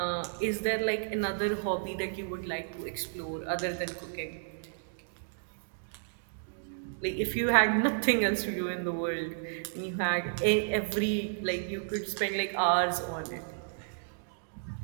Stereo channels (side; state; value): left; silent; digital silence